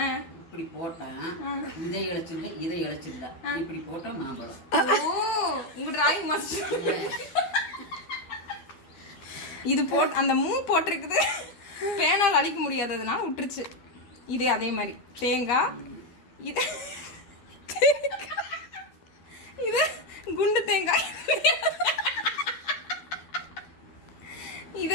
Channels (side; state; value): right; late; 13 ms